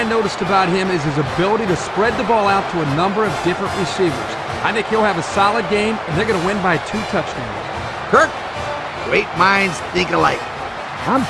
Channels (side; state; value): both; identical; correlation 1.00